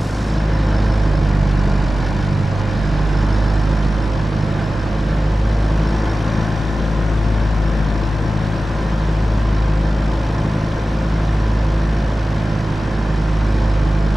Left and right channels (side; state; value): both; normal; correlation 0.95